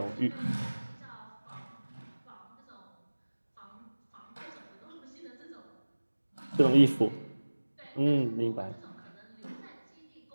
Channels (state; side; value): inverted; both; correlation -1.00